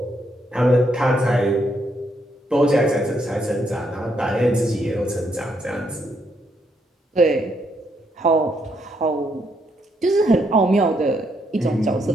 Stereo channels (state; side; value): normal; both; correlation 0.75